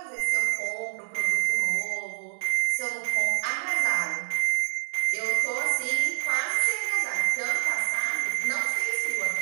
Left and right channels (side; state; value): left; silent; 60 dB below the other